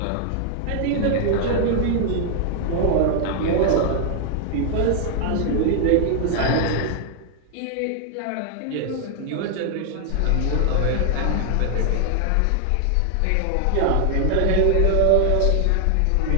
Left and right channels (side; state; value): both; different; correlation 0.00